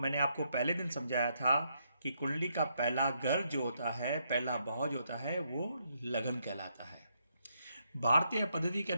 आपको पहले दिन समझाया था कि कुंडली का पहला घर जो होता है, पहला भाव जो होता है, वो लगन कहलाता है। भारतीय पद्धति के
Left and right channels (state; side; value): inverted; both; correlation -0.77